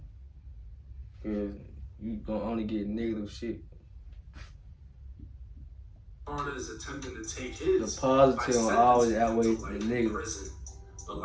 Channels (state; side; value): identical; both; correlation 1.00